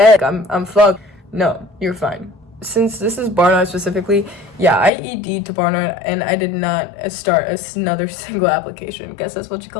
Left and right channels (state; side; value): drops out; right; at 4.9 s